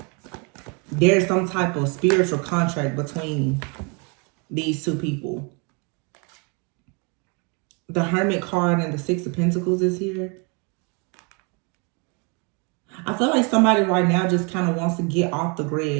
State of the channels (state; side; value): quieter; left; 33.0 dB